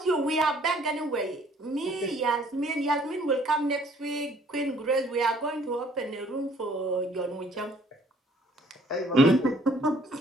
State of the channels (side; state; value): both; normal; correlation 0.60